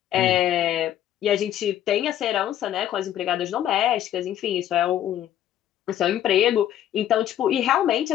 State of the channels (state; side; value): quieter; right; 11.5 dB